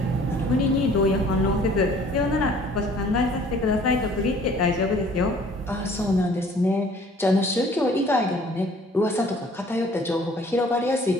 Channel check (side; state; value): both; normal; correlation 0.54